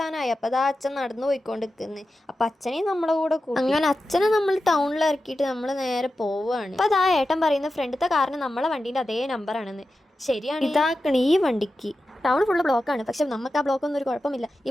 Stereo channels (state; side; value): normal; both; correlation 0.92